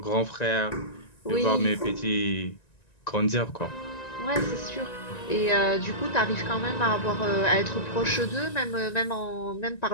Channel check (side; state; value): right; late; 1.9 ms